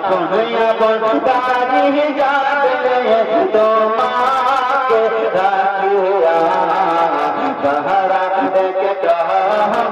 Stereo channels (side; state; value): both; identical; correlation 1.00